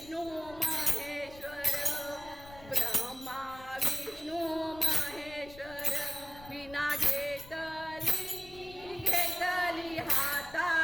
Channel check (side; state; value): left; noise; rumble, 19 dB below the sound